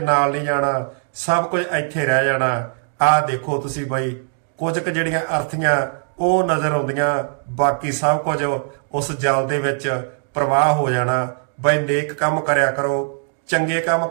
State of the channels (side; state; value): left; silent; digital silence